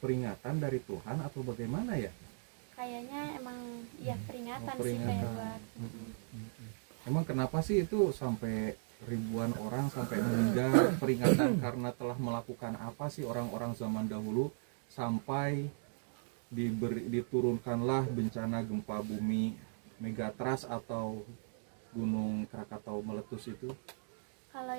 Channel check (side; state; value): left; silent; digital silence